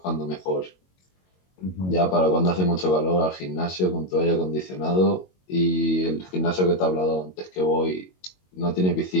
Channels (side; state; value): right; late; 22 ms